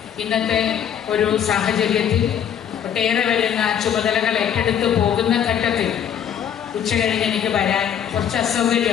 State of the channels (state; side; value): quieter; right; 9.0 dB